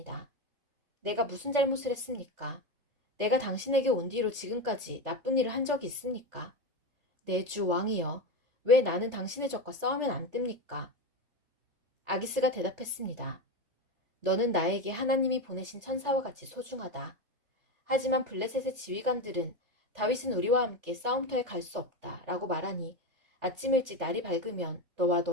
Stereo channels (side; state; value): left; late; 3.4 ms